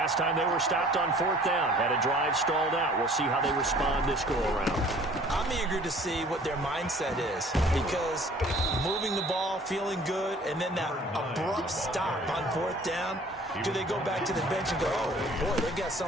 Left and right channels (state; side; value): normal; both; correlation 0.52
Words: time they were stopped on 4th down, had a drive stalled out. We'll see how they respond this go-around. I'm eager to see what their mindset is, because moving the ball, feeling good, and then that abrupt stop on 4th down, do they go back to the bench and go, oh, boy, they got